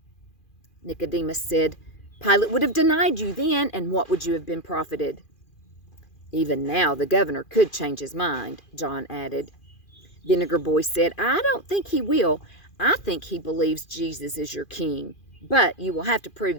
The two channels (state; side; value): late; right; 2.4 ms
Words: Nicodemus said, "Pilate would have denied you then, and what would you have been profited?" "Even now the governor could change his mind," John added. Vinegar Boy said, "I don't think he will. I think he believes Jesus is your king. But you will have to